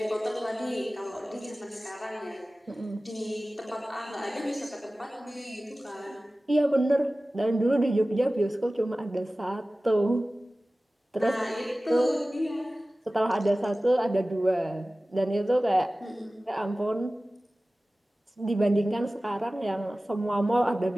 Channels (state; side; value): normal; both; correlation 0.97